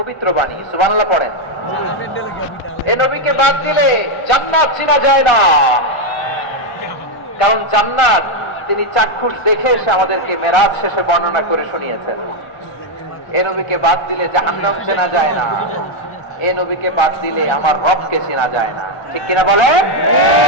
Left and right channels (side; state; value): right; late; 1.4 ms